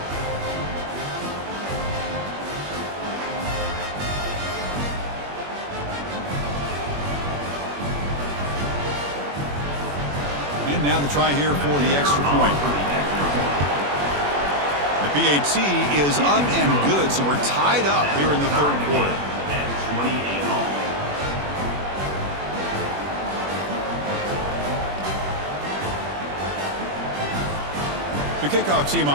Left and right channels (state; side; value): late; left; 21 ms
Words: And now the try here for the extra point. The PAT is up and good, so we're tied up here in the third quarter. The kickoff team